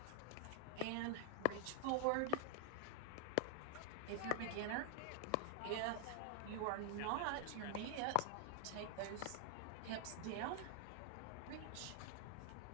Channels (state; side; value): different; both; correlation 0.00